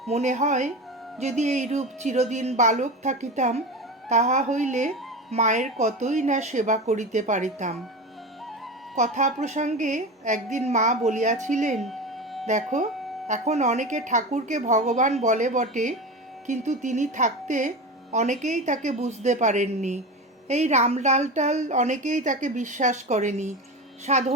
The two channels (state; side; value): normal; both; correlation 0.25